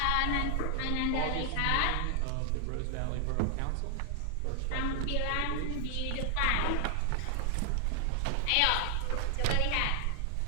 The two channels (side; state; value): both; different; correlation 0.00